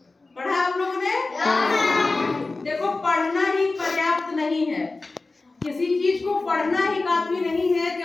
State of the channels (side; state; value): right; quieter; 3.5 dB